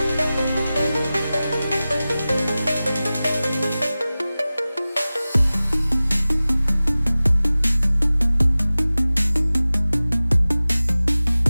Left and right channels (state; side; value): inverted; both; correlation -0.97